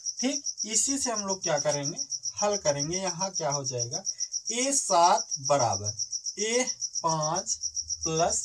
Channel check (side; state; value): both; identical; correlation 1.00